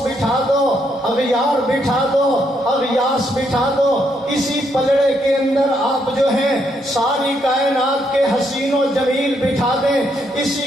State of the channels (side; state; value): both; normal; correlation 0.75